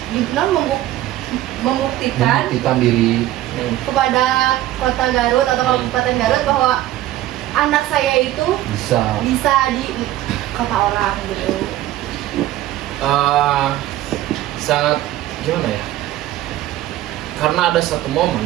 membuktikan diri. kepada kota Garut atau Kabupaten Garut bahwa anak saya itu bisa di kota orang gitu. Sangat gimana ya? Karena ada satu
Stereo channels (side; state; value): left; quieter; 14.5 dB